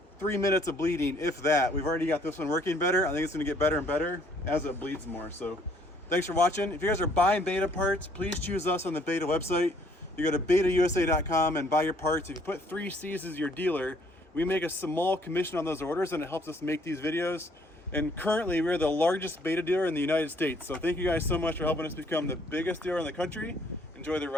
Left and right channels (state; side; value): normal; both; correlation 0.63